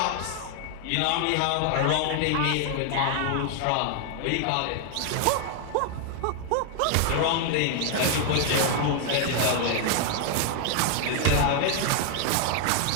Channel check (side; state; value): both; different; correlation 0.00